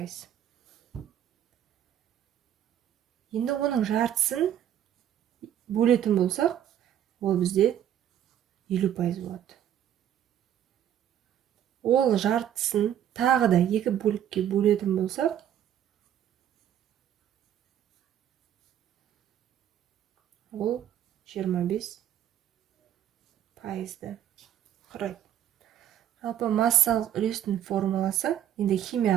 Енді оның жартысын бөлетін болсақ, ол бізде 50% болады. Ол жартысын тағы да екі бөлікке бөлетін болсақ, ол 25%-ді құрайды. Жалпы массалық үлестің формуласы, енді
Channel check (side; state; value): left; quieter; 10.6 dB